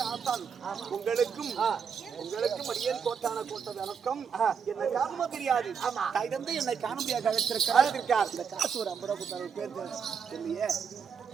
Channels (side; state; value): left; quieter; 6.7 dB